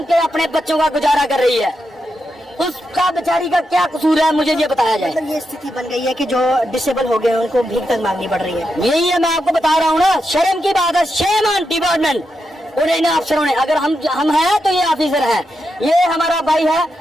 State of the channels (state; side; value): normal; both; correlation 0.85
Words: के अपने बच्चों का गुजारा कर रही है। उसका बेचारी का क्या कसूर है, मुझे ये बताया जाए। मतलब ये स्थिति बन गई है कि जो डिसेबल हो गए हैं उनको भीख तक मांगनी पड़ रही है। यही है, मैं आपको बता रहा हूँ ना, शर्म की बात है। शेम ऑन डिपार्टमेंट, उन्हें इन अफसरों ने, अगर हम हैं तो ये ऑफिसर हैं। ये हमारा भाई है,